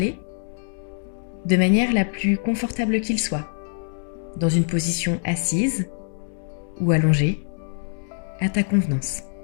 de manière la plus confortable qu'il soit, dans une position assise ou allongée, à ta convenance.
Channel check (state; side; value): silent; right; digital silence